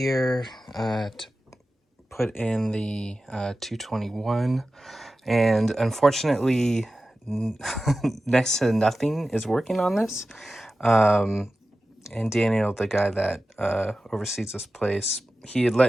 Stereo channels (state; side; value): normal; both; correlation 0.94